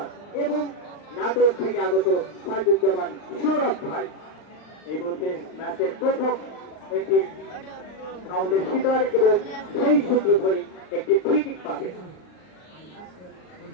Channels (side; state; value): right; late; 39 ms